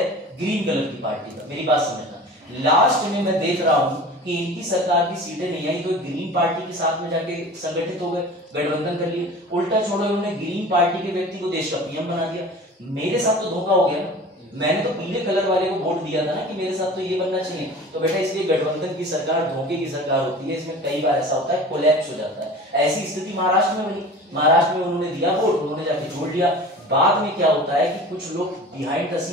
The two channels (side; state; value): both; normal; correlation 0.39